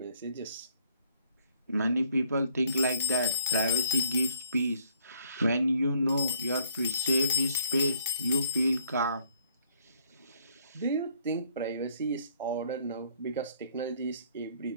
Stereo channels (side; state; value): both; inverted; correlation -0.64